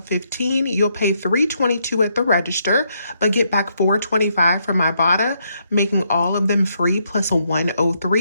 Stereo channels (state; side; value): inverted; both; correlation -0.75